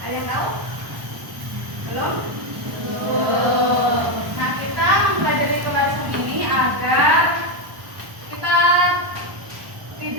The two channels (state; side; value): late; left; 1.1 ms